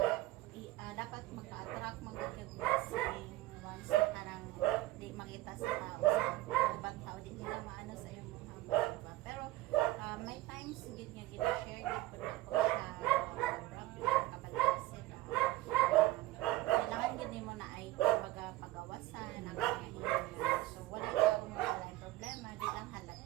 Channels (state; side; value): quieter; left; 17.7 dB